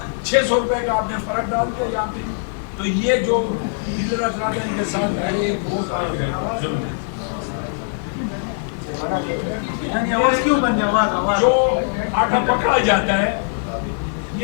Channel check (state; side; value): silent; right; digital silence